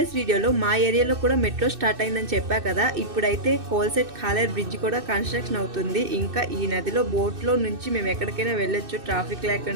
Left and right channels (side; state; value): left; late; 2.6 ms